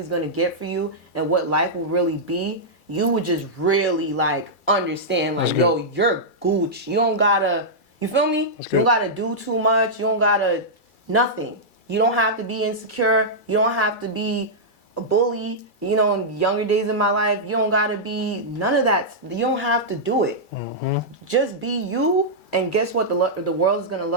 going to get for you and what life will really be, you would just really, like, understand, like, yo, you're Gucci. You don't gotta, you feel me? You don't gotta do too much. You don't gotta, nothing. You don't have to be insecure. You don't have to be a bully. You know, in younger days of my life, you don't gotta be none of that. You don't have to do it. Just be you, and guess what? The world is gonna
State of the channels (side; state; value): right; late; 2.3 ms